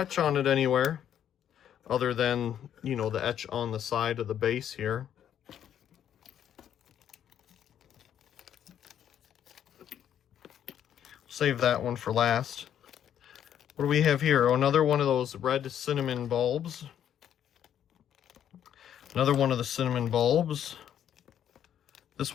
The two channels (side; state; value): right; quieter; 9.8 dB